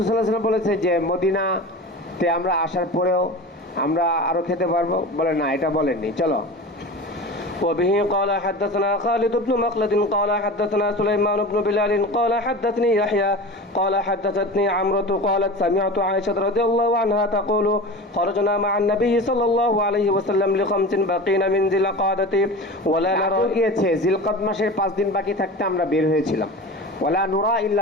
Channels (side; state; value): both; normal; correlation 0.32